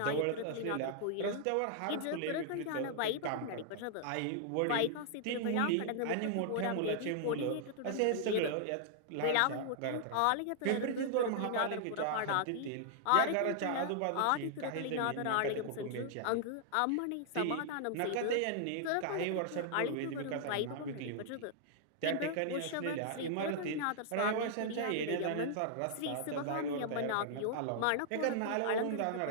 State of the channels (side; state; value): both; different; correlation -0.01